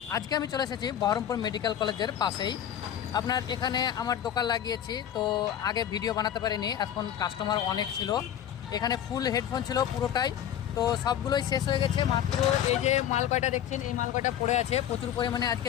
আজকে আমি চলে এসেছি বহরমপুর মেডিকেল কলেজের পাশেই। আপনার এখানে আমার দোকান লাগিয়েছি, তো আগে ভিডিও বানাতে পারিনি, এখন কাস্টমার অনেক ছিল। এখানে ফুল হেডফোন ছিল পুরোটাই, তো সবগুলোই শেষ হয়ে গেছে। মাত্র এই যে মাল কয়টা দেখছেন, এই মাল কয়টা পড়ে আছে। প্রচুর পরিমাণে আজকে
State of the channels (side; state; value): right; quieter; 10.3 dB